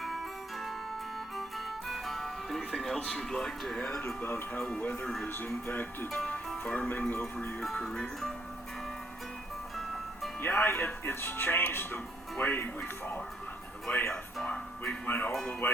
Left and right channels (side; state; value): both; normal; correlation 0.70